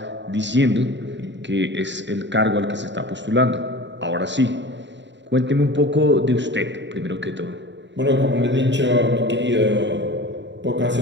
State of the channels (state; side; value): late; left; 0.52 ms